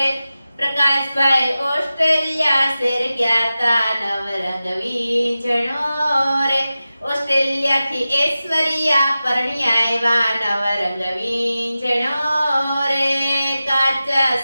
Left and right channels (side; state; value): both; inverted; correlation -0.94